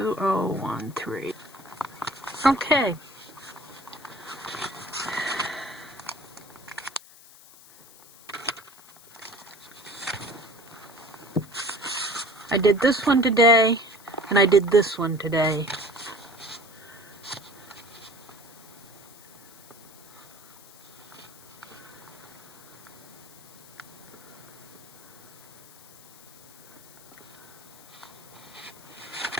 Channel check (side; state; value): left; noise; hiss, 22 dB below the sound